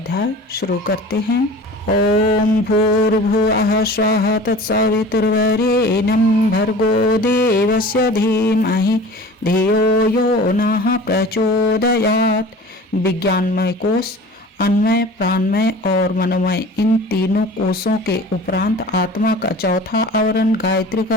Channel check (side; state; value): both; normal; correlation 0.41